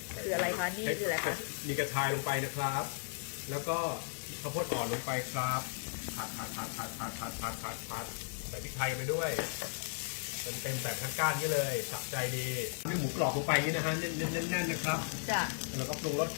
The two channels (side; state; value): right; silent; digital silence